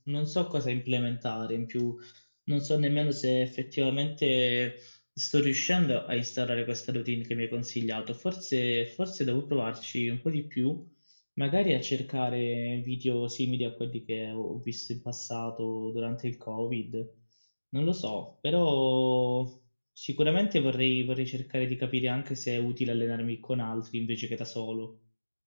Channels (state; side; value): inverted; both; correlation -1.00